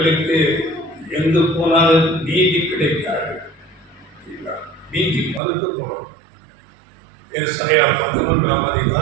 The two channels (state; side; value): drops out; left; at 5.4 s